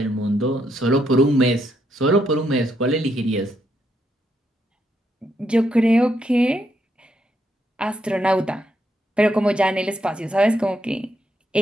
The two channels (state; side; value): normal; both; correlation 0.77